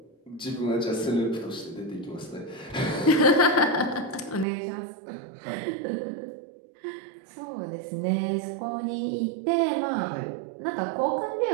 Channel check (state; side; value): drops out; left; at 4.5 s